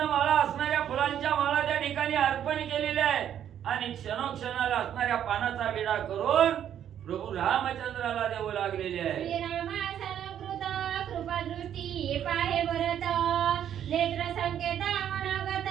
असणाऱ्या फुलांच्या माळा त्या ठिकाणी अर्पण केलेल्या आहेत आणि क्षणोक्षणाला असणाऱ्या पानाचा विडा करून प्रभू रामचंद्राला देऊ लागलेले आहे. श्रीरामासलकृत कृपादृष्टी पाहे भरत नेत्र संकेत मनोगत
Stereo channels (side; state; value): left; quieter; 9.9 dB